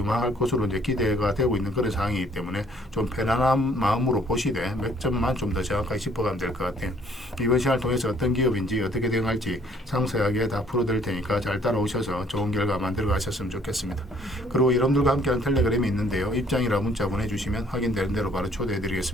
것으로 이제 기대가 되고 있는 그런 상황이기 때문에 좀 편안한 마음으로 보시되 몇 점만 좀 더 정확하게 짚어가면 될 것 같아요. 이번 시간을 통해서 어떤 기업인지 어떻게 대응할지 상세하게 다 풀어드릴 테니까 잘 따라오셔서 좋은 결과 만들어 가셨으면 좋겠습니다. 그리고 여러분들과 함께하는 텔레그램이 있는데요. 입장이라 문자 보내주시면 확인되는 대로 바로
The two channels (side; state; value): both; normal; correlation 0.61